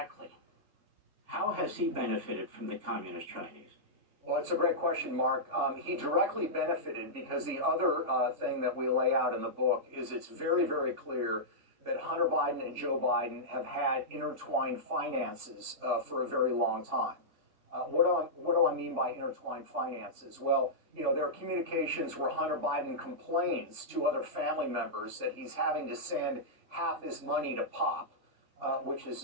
how has he benefited from the communist Chinese? Well, it's a great question, Mark. He directly benefited because the other thing that we lay out in the book is it's very, very clear that Hunter Biden and Joe Biden have had intertwined finances for a very long time. What do I mean by intertwined finances? Well, there are communications where Hunter Biden complains to other family members that he's having to send half his money to Pop, which is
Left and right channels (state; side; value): late; left; 3.5 ms